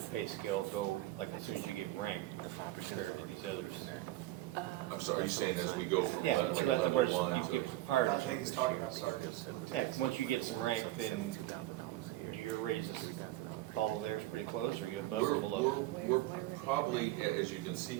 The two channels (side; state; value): left; quieter; 16.4 dB